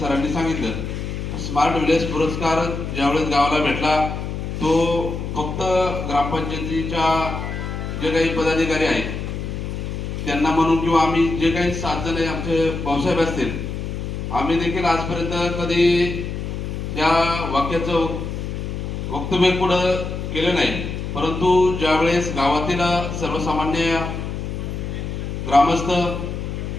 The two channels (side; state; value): left; noise; hum, 5 dB below the sound